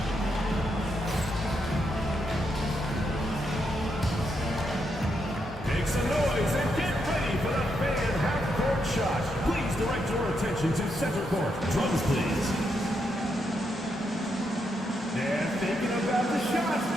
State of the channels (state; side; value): normal; both; correlation 0.80